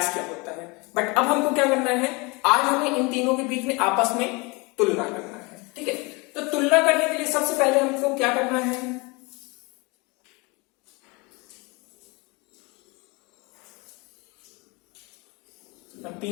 क्या होता है। बट अब हमको क्या करना है, आज हमें इन तीनों के बीच में आपस में तुलना करना है। ठीक है, तो तुलना करने के लिए सबसे पहले हमको क्या करना है, हम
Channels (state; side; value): quieter; right; 27.3 dB